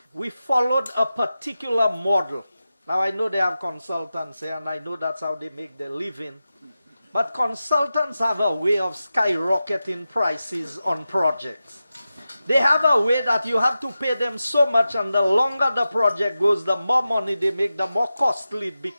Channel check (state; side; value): inverted; both; correlation -0.93